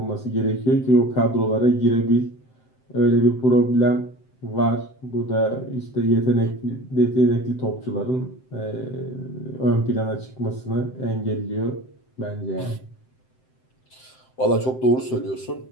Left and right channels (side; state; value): right; late; 7.8 ms